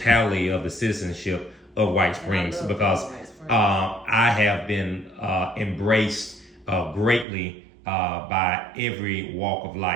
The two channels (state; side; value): drops out; left; at 7.2 s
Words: of the citizenship of White Springs, because I have been embraced greatly by every walk of